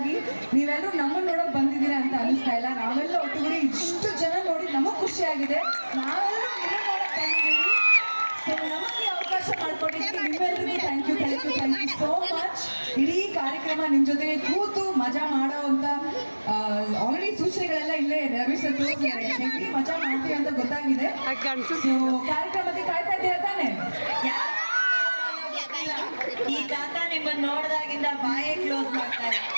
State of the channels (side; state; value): both; inverted; correlation -1.00